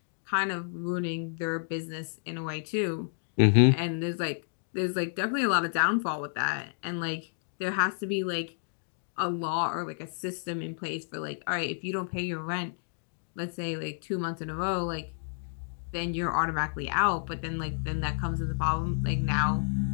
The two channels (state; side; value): silent; right; digital silence